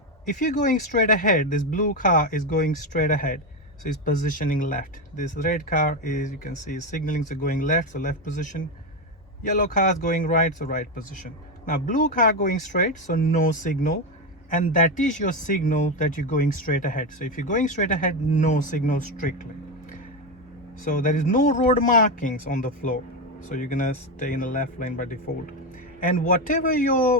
if you're going straight ahead, this blue car is going straight ahead, so it's positioning left. This red car is, you can see, signaling, so going left, so left position. Yellow car is going right, so right position. Now blue car going straight, so no signal, and that is your signal that you're going straight ahead. So if you're going straight ahead, no signal strictly. So there is no road markings on the floor, so you're gonna stay in the left lane by default. And whatever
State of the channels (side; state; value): both; normal; correlation 0.12